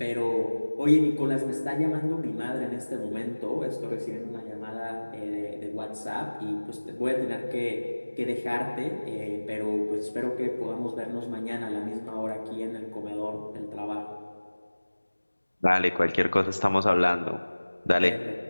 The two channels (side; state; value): both; inverted; correlation -1.00